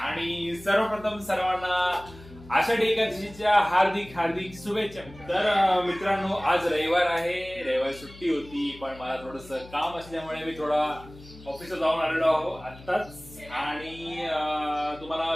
सर्वप्रथम सर्वांना आषाढी एकादशीच्या हार्दिक हार्दिक शुभेच्छा. तर मित्रांनो, आज रविवार आहे, रविवार सुट्टी होती, पण मला थोडस काम असल्यामुळे मी थोडा ऑफिसला जाऊन आलेलो आहो आत्ताच. आणि तुम्हाला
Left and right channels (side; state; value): left; noise; hum, 19 dB below the sound